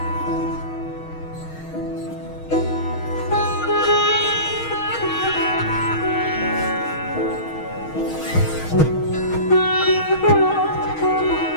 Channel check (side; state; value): right; late; 6.4 ms